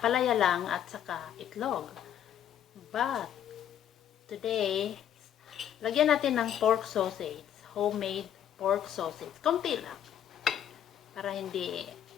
lang at saka itlog. But, today, lagyan natin ng pork sausage, homemade pork sausage. Konti lang. Para hindi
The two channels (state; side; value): quieter; right; 10.1 dB